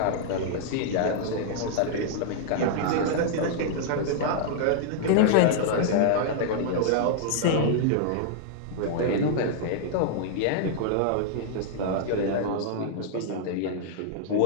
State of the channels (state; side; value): different; both; correlation -0.01